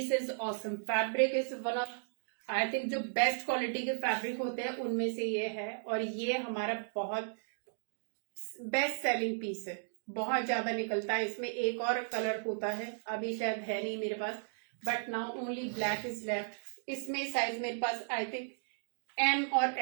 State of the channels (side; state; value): left; silent; digital silence